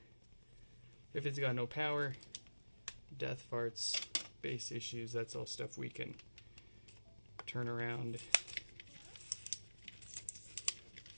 If it's got no power, death farts, bass issues, that's all stuff we can turn around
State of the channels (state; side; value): inverted; both; correlation -1.00